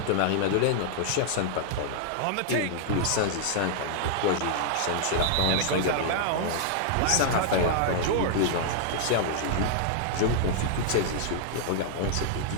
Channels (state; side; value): different; both; correlation 0.00